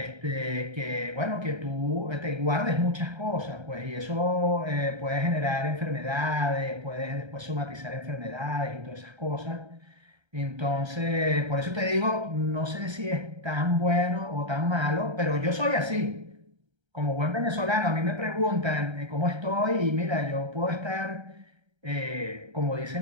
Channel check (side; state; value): left; late; 1.3 ms